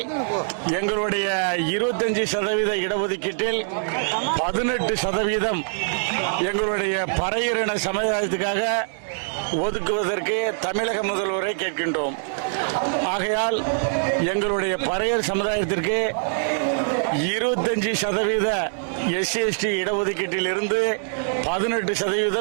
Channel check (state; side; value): silent; left; 63 dB below the other